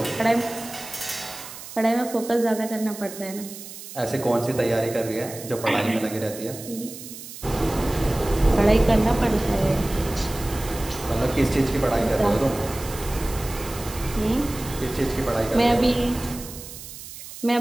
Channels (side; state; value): right; noise; hiss, 13 dB below the sound